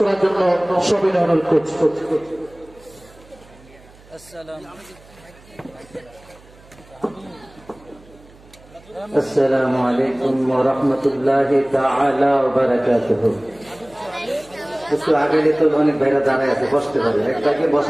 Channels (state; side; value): noise; right; hum, 25 dB below the sound